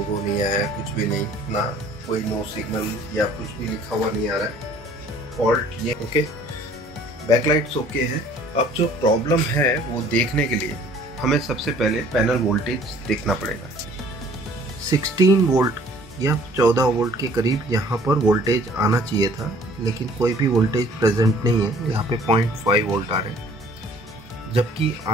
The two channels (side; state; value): both; normal; correlation 0.54